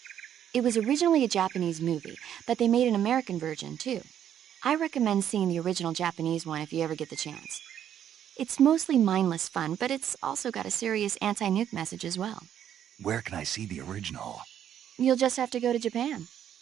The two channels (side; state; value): left; quieter; 9.9 dB